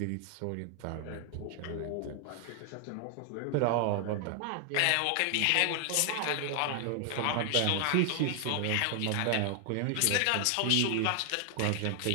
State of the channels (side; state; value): both; different; correlation 0.00